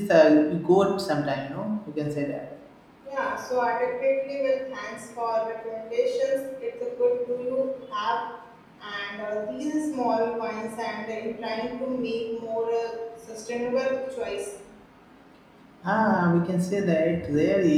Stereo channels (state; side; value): identical; both; correlation 1.00